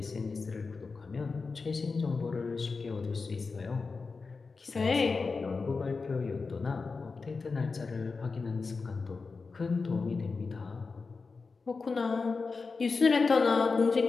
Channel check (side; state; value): right; quieter; 4.4 dB